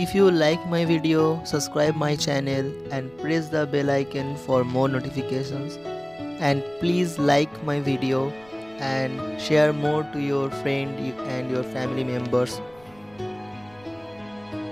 you like my video, subscribe my channel and press the bell icon for more notifications. And please like my video and share more to your friend and your family members.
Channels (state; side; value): noise; right; rumble, 28 dB below the sound